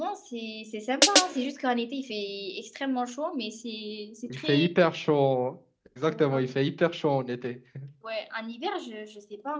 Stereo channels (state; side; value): identical; both; correlation 1.00